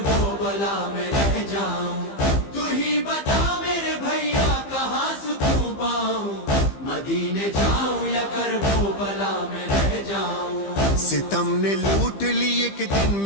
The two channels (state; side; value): late; right; 15 ms